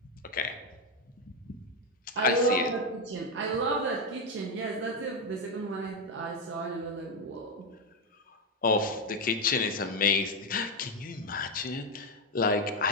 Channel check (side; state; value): both; normal; correlation 0.06